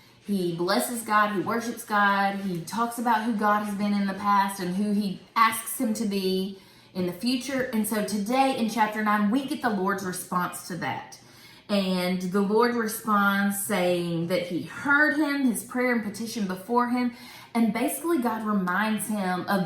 he blesses God, he worships God, he talks about who God has been in the past and who he asks him to be in the future. And so today in chapter 9, we get the Lord's response to that. And the Lord responds saying that he heard him, his prayer and petition before him. And basically God reminds him of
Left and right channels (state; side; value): identical; both; correlation 1.00